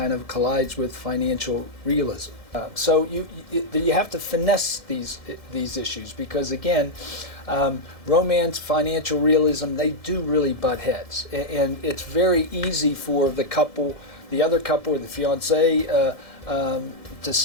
of collides with financial realism. So you have to finesse these issues because again, romance, financial realism, they do really butt heads, and it's very easy for the other couple, or the fiance, to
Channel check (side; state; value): right; late; 1.7 ms